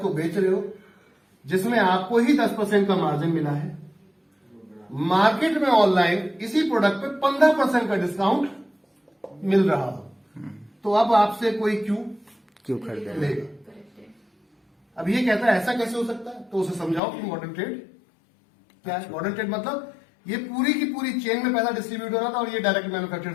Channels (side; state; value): right; drops out; at 17.0 s